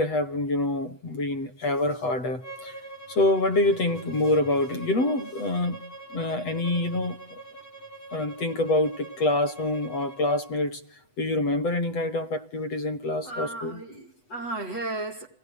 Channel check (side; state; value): right; late; 8.1 ms